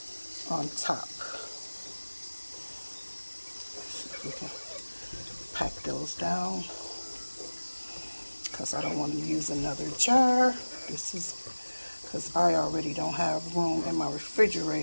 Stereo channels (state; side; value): inverted; both; correlation -1.00